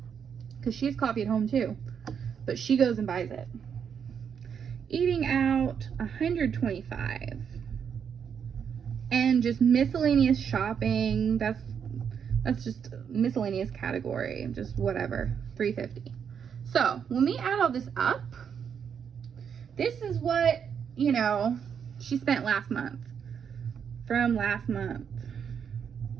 because she has coffee at home too, but she goes and buys it. Eating out $125, and just miscellaneous shopping, that's just miscellaneous category, just whatever, $350. So when we add all this up, this is what, you know, she spent last month. From last month,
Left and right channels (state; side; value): quieter; left; 7.4 dB